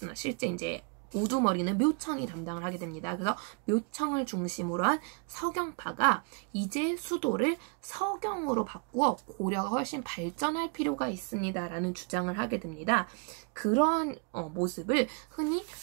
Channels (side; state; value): left; quieter; 35.2 dB